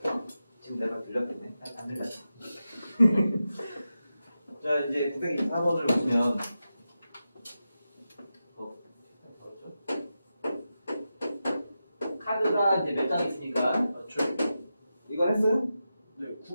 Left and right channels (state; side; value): inverted; both; correlation -0.91